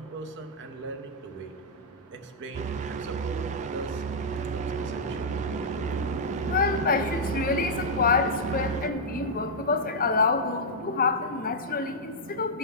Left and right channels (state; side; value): normal; both; correlation -0.08